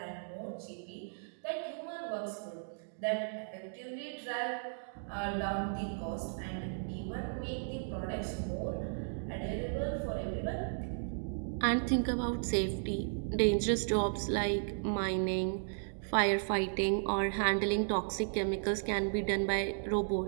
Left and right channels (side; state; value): left; silent; digital silence